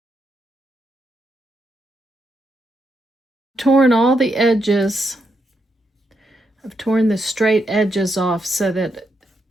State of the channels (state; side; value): normal; both; correlation 0.81